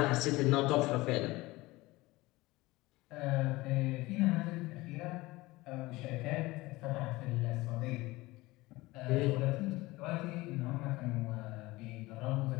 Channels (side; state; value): right; quieter; 20.4 dB